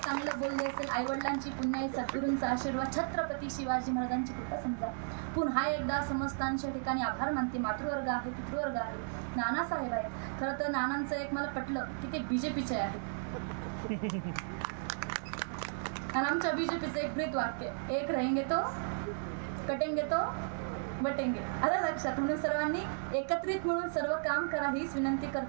बोलले असेल आईवडिलांची पुण्याई, सद्गुरूंचा आशीर्वाद, छत्रपती शिवाजी महाराजांची कृपा समजा. पुन्हा एकदा समस्तांच्या ठिकाणी आभार मानते. मातृवर्ग आहे, पितृवर्ग आहे, नानासाहेब आहे. खरं तर नानांचं एक मला पटलं की ते बीजेपीचे आहे. आणि आमच्या बीजेपीचं एक ब्रीत वाक्य, एक रहेंगे तो कटेंगे तो बटेंगे. आलं लक्षात. म्हणून सर्वांनी एकत्रित म्हणून सर्व काम करा हीच विनंती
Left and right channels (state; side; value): silent; left; digital silence